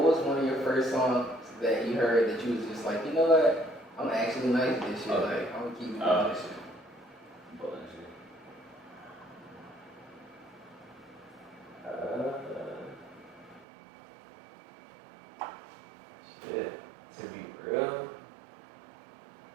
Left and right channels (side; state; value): left; drops out; at 13.7 s